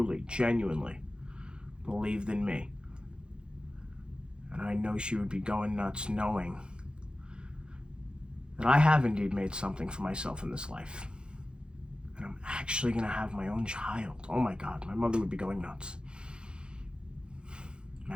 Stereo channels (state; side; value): late; left; 0.051 ms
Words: genuinely believed in me. And I know she would be going nuts knowing that I have indeed made something for myself in this life. And I'm actually going to have my own child. Oh my God, my mother would be going nuts.